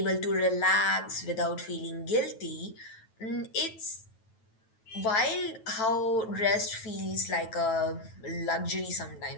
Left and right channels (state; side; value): late; right; 9.1 ms